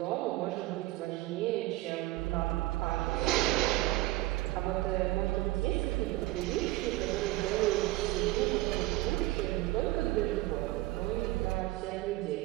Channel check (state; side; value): quieter; left; 18.8 dB